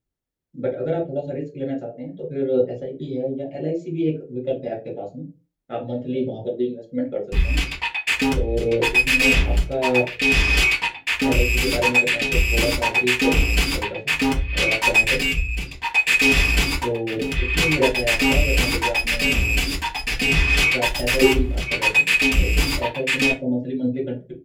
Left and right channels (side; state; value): both; identical; correlation 1.00